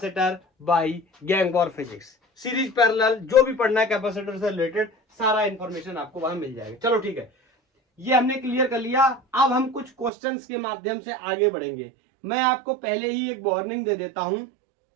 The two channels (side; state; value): left; drops out; at 10.1 s